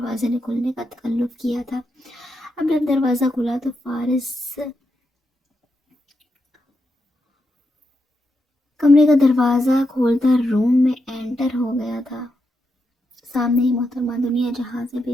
نے کھلنے کا تکلف کیا تھا۔ اب جب دروازہ کھلا تو فارس کمرے کا دروازہ کھولتا روم میں انٹر ہو گیا تھا۔ سامنے ہی محترمہ دنیا جہاں سے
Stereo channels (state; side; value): normal; both; correlation 0.85